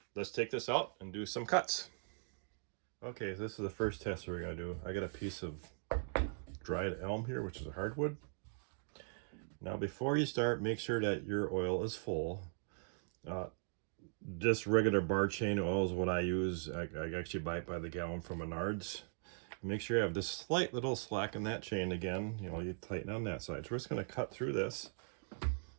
let's take this out and do some cuts. Okay, this is the first test we're gonna do. I got a piece of dried elm here, which is a hardwood. Now before you start, make sure that your oil is full. Just regular bar chain oil is what I use. I actually buy it by the gallon from Menards. Make sure you have this slight little slack in that chain again. You know, you tighten on that side. So we're just gonna cut through this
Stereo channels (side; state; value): left; silent; digital silence